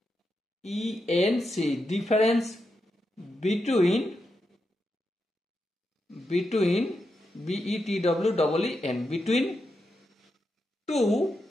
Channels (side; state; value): both; normal; correlation 0.86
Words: difference between between two